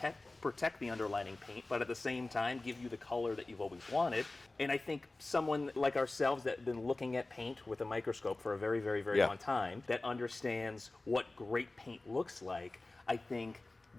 protect the underlining paint, but at the same time give you the color that you've always wanted. And I think someone like ourselves that have been looking at paint with a microscope for a very long time, that understands what great paint looks like, I think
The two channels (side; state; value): right; quieter; 3.0 dB